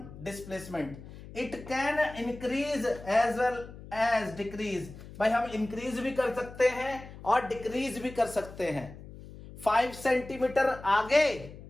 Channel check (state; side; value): noise; left; hum, 15 dB below the sound